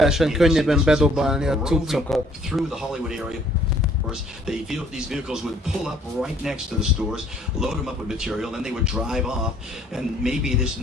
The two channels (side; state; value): both; normal; correlation 0.60